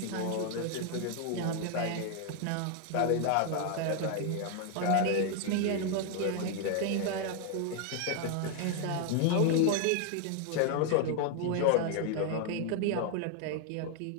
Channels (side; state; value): both; different; correlation 0.00